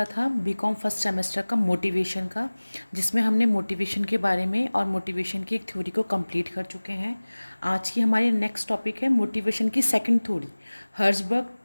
था बीकॉम फर्स्ट सेमेस्टर का मोटिवेशन का, जिसमें हमने मोटिवेशन के बारे में और मोटिवेशन की एक थ्योरी को कंप्लीट कर चुके हैं। आज की हमारी नेक्स्ट टॉपिक है मोटिवेशन की second theory, Herzberg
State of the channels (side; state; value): both; inverted; correlation -1.00